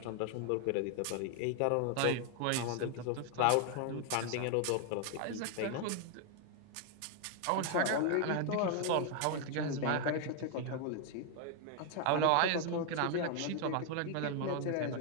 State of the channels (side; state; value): both; different; correlation 0.00